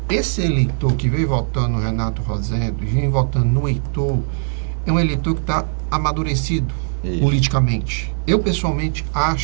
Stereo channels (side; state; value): left; silent; 66 dB below the other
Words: Esse eleitor que veio votando no Renato Rosendo e vem votando no Heitor, é um eleitor que está amadurecido politicamente. Eu, pessoalmente,